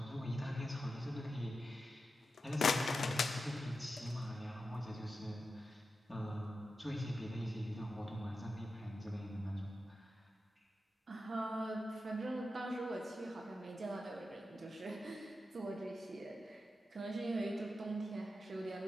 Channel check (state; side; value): normal; both; correlation 0.90